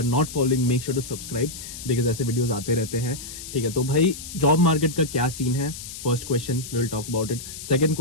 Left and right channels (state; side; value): noise; left; hiss, 11 dB below the sound